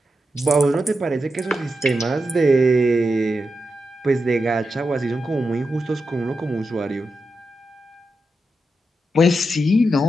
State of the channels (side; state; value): both; normal; correlation 0.88